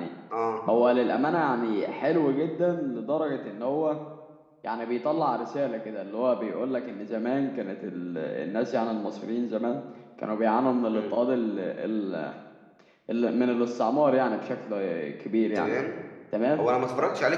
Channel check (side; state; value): both; identical; correlation 1.00